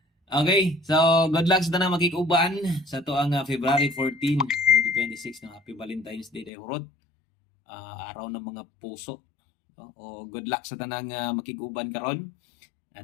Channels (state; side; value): drops out; right; at 6.5 s